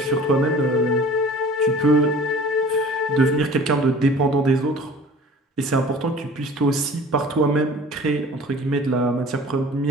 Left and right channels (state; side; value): normal; both; correlation 0.45